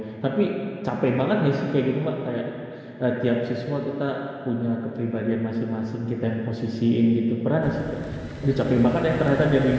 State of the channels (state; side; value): identical; both; correlation 1.00